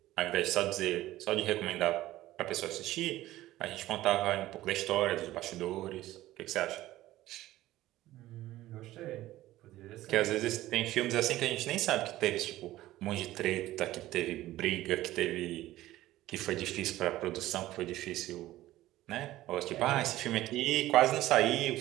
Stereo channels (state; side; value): quieter; left; 15.7 dB